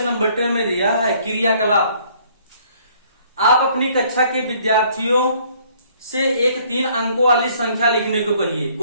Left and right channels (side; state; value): both; inverted; correlation -0.61